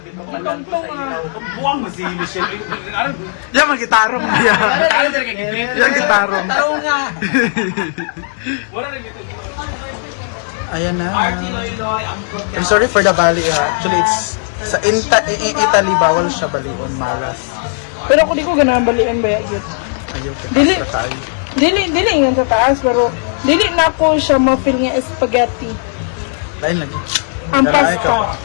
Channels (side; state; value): right; silent; digital silence